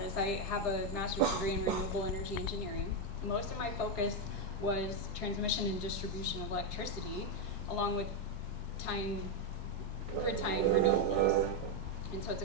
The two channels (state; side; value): normal; both; correlation 0.04